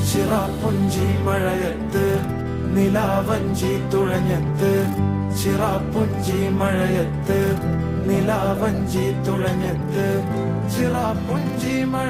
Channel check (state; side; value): identical; both; correlation 1.00